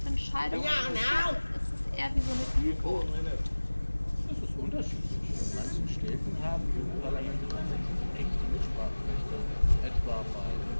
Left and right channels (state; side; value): inverted; both; correlation -1.00